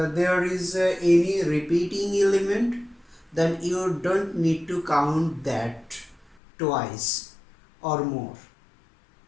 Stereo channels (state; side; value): drops out; right; at 6.4 s